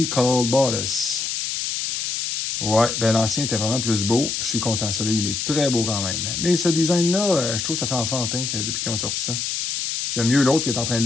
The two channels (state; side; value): noise; left; hiss, 2 dB below the sound